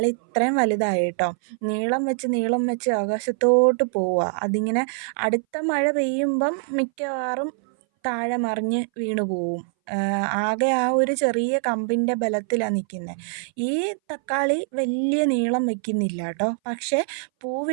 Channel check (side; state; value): left; silent; 60 dB below the other